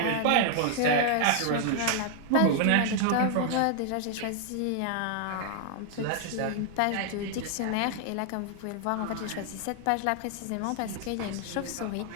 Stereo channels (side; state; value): both; different; correlation 0.00